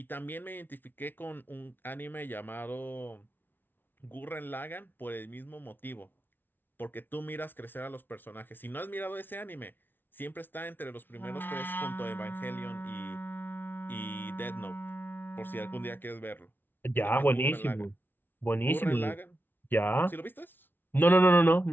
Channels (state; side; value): late; right; 0.097 ms